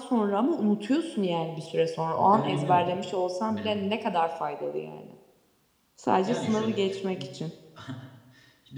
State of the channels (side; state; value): both; identical; correlation 1.00